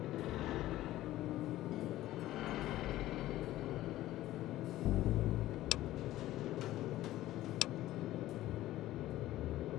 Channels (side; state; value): right; quieter; 15.2 dB